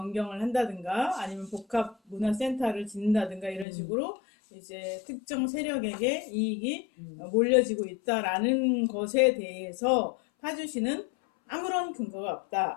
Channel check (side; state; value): right; drops out; at 3.7 s